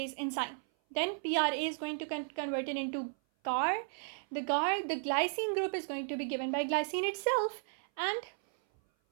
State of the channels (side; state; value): left; silent; 55 dB below the other